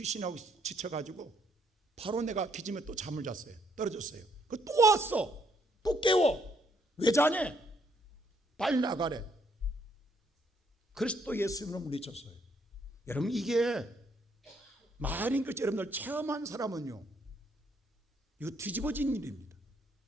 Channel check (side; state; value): both; normal; correlation 0.71